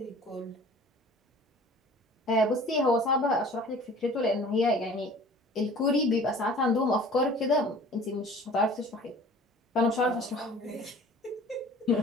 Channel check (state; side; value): normal; both; correlation 0.46